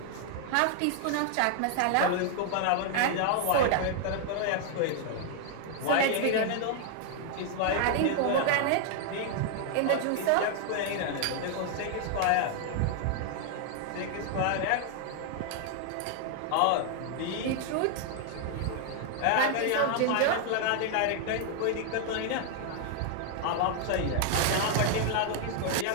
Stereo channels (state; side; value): different; both; correlation 0.00